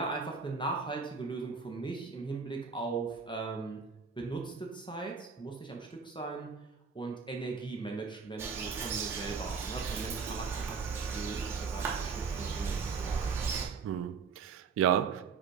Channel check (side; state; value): left; quieter; 5.4 dB